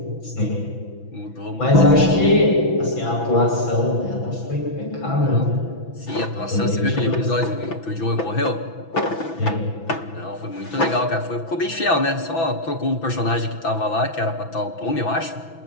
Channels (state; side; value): late; right; 6.0 ms